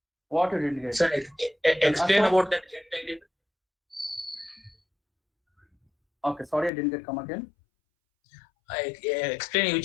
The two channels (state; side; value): drops out; right; at 6.7 s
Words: What you didn't get? Sir, explain Ashok? about that get ID. Okay, sorry, I didn't get. Come again. I explain